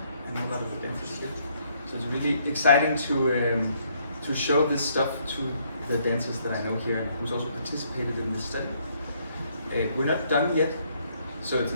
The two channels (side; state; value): both; inverted; correlation -0.69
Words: I know a lot of the dancers here. So it's really exciting to show this stuff to the dancers that I know here and who's also participated in this study. We're not done yet, so it's